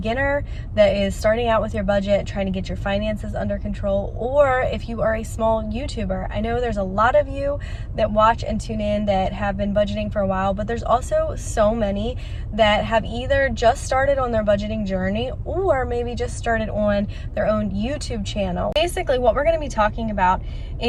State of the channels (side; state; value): both; identical; correlation 1.00